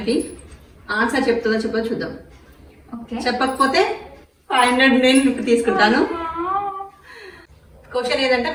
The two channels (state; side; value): identical; both; correlation 1.00